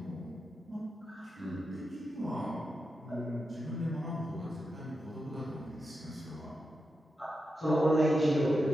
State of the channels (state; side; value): normal; both; correlation 0.88